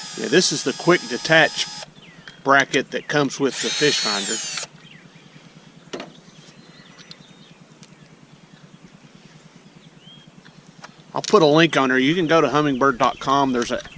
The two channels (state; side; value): identical; both; correlation 1.00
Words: Yeah, this is the quick detach bracket that comes with the fish finder. I'll put a link on there. You can go to humminbird.com. There's a